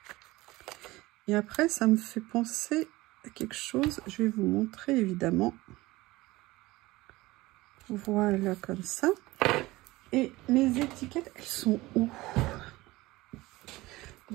Et après, ça me fait penser à quelque chose. Je vais vous montrer, évidemment. Voilà, comme ça. Et mes étiquettes, elles sont où?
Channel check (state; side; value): quieter; left; 19.6 dB